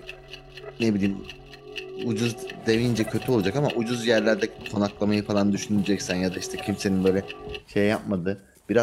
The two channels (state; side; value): identical; both; correlation 1.00